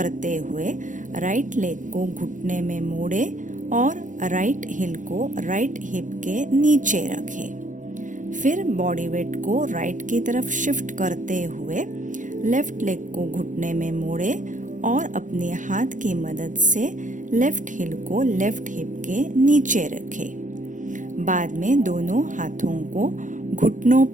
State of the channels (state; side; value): late; left; 0.37 ms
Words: हुए राइट लेग को घुटने में मोड़े और राइट हिल को राइट हिप के नीचे रखें। फिर बॉडी वेट को राइट की तरफ शिफ्ट करते हुए लेफ्ट लेग को घुटने में मोड़े और अपने हाथ की मदद से लेफ्ट हिल को लेफ्ट हिप के नीचे रखें। बाद में दोनों हाथों को घुटनों